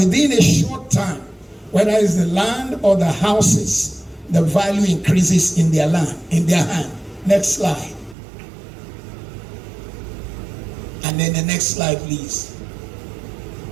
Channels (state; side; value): drops out; left; at 8.2 s